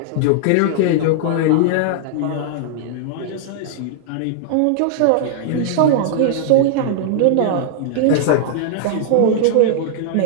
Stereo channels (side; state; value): both; different; correlation -0.01